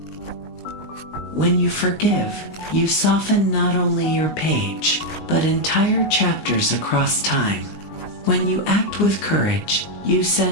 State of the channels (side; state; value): right; late; 19 ms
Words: When you forgive, you soften not only your page, but entire chapters across time. When you act with courage, you